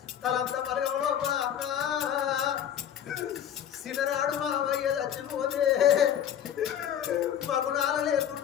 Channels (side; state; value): right; quieter; 9.8 dB